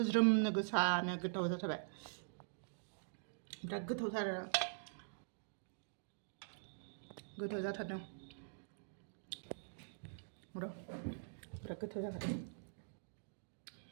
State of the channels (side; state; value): left; silent; digital silence